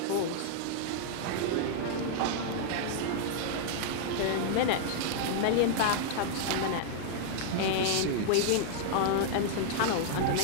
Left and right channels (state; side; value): different; both; correlation -0.01